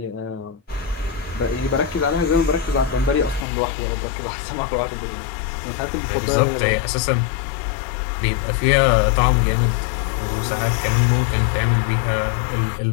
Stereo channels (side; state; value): right; drops out; at 3.5 s